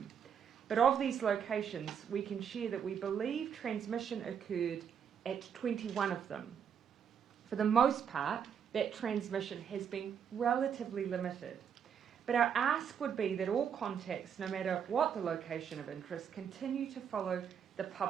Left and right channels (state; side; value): quieter; left; 7.8 dB